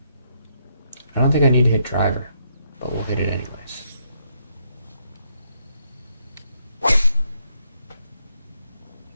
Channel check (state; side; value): inverted; both; correlation -0.75